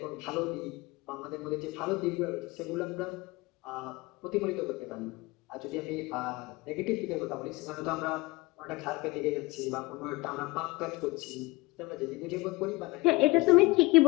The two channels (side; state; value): right; quieter; 22.4 dB